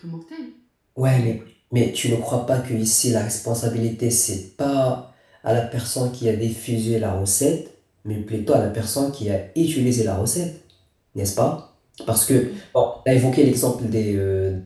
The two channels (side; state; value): both; identical; correlation 1.00